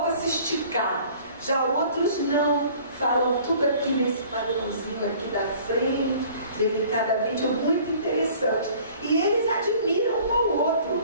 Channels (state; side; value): inverted; both; correlation -0.51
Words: se esticar. Já outros não, falam tudo aqui nesse padrãozinho aqui da frente, delicadamente, é muito interessante. E eles admiram um ao outro.